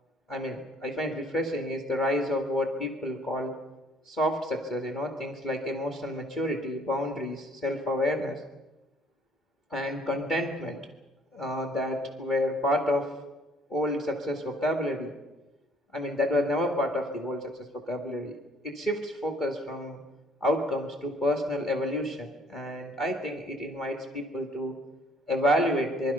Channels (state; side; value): normal; both; correlation 0.60